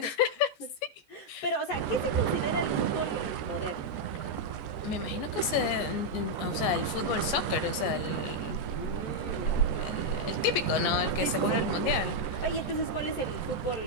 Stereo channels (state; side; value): late; right; 14 ms